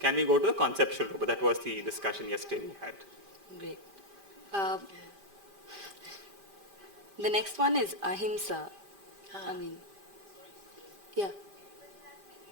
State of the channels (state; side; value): late; left; 5.0 ms